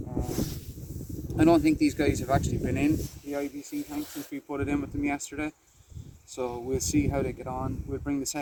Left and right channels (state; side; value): identical; both; correlation 1.00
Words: I don't think these guys have actually been in the IBC tank since we put it in with them yesterday, so we'll see how they get on. We'll bring the